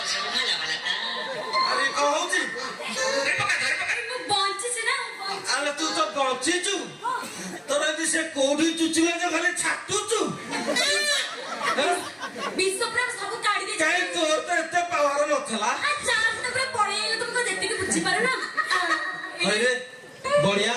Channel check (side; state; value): both; identical; correlation 1.00